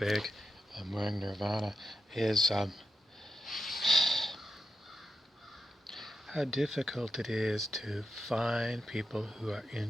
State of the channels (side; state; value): both; normal; correlation 0.87